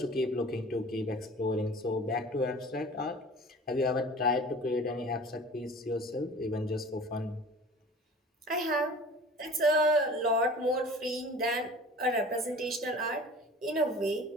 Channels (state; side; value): normal; both; correlation 0.42